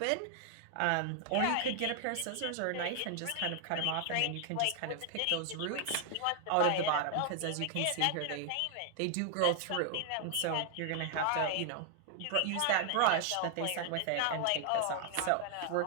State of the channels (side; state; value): both; different; correlation 0.00